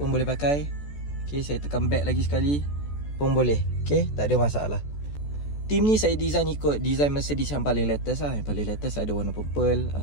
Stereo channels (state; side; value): late; right; 14 ms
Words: boleh pakai. Okay, saya tekan back lagi sekali pun boleh. Okay, tak ada masalah. Team ni saya design ikut design Mercedes yang paling latest lah. Yang paling latest ada warna purple.